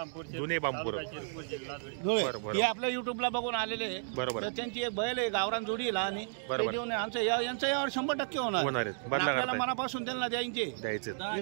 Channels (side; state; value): left; silent; digital silence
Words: बरोबर, हे आपल्या युट्यूबला बघून आलेले आहे। बरोबर। त्यांची एक बैल आहे गावरान जोडी आहे लहान, बरोबर। आमचं यांचं यावर 100% होणार आहेत। बदला करताय? मनापासून त्यांना द्यायचे।